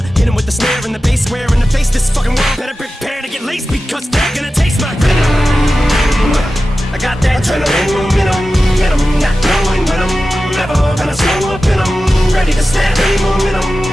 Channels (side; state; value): both; normal; correlation 0.94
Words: hit him with the snare and the bass, square in the face. This fucking world better prepare to get laced, because they're gonna taste my venom. I got that adrenaline in 'em, not knowing when I'm never gonna slow up in 'em. Ready to snap any